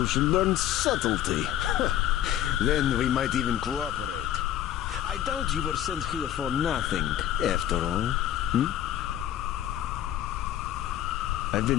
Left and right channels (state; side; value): quieter; right; 11.6 dB